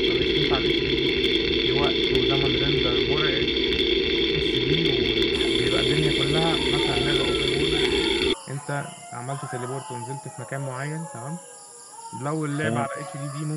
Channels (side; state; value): both; identical; correlation 1.00